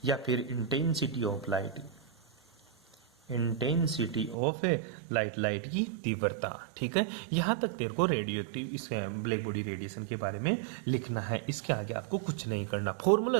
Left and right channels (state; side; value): drops out; left; at 4.4 s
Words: या फिर intensity of light, intensity of light, light की तीव्रता, ठीक है। यहां तक तेरे को रेडियोएक्टिव इस ब्लैक बॉडी रेडिएशन के बारे में लिखना है। इसके आगे आपको कुछ नहीं करना, फॉर्मूला